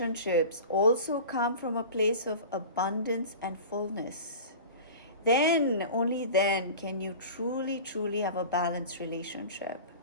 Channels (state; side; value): inverted; both; correlation -0.36